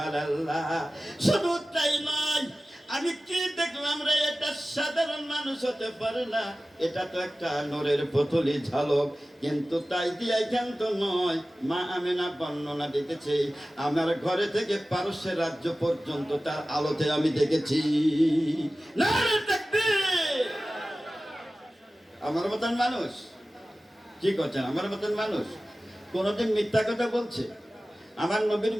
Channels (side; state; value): both; normal; correlation 0.96